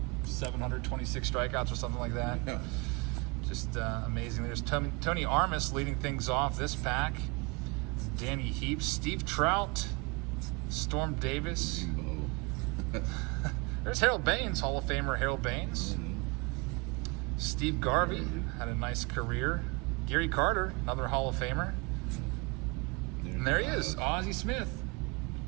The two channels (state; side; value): quieter; left; 28.6 dB